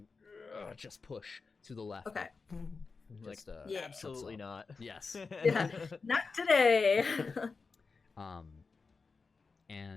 just push to the left. Okay. Just, Absolutely not. Yes. Yeah. Not today.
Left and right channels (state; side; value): quieter; right; 4.5 dB